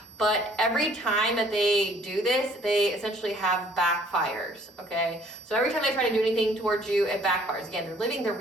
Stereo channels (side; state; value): both; normal; correlation 0.58